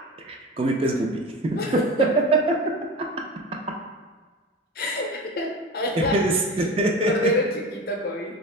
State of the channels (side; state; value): both; normal; correlation 0.31